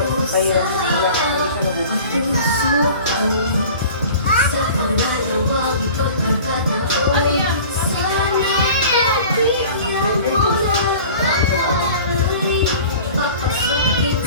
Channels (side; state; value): both; inverted; correlation -0.42